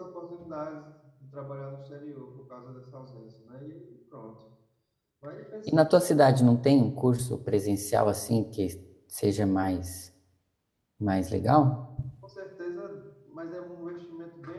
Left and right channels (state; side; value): identical; both; correlation 1.00